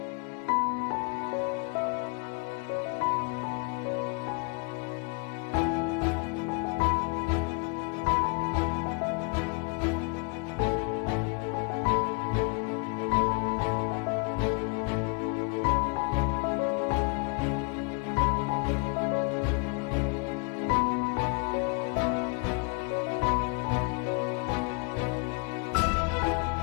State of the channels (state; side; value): quieter; right; 33.6 dB